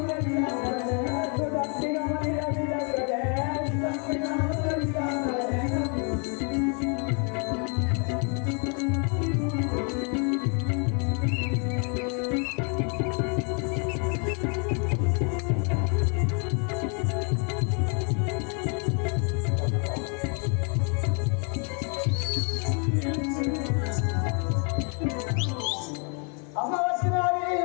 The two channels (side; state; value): right; quieter; 38.0 dB